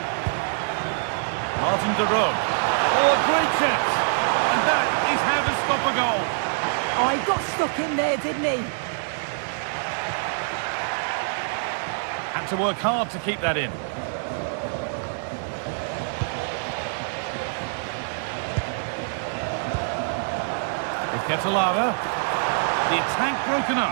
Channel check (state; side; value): silent; left; digital silence